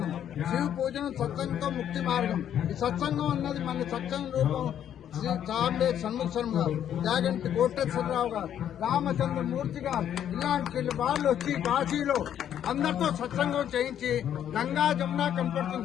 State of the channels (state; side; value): quieter; right; 10.0 dB